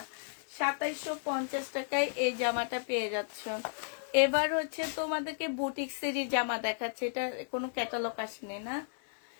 2750 টাকায় এই জামাটা পেয়ে যাচ্ছ। এবার হচ্ছে তোমাদেরকে বুটিক্সেরই জামা দেখাচ্ছে, এটা কোনো ক্যাটালগ আসেনি না,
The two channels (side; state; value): right; silent; digital silence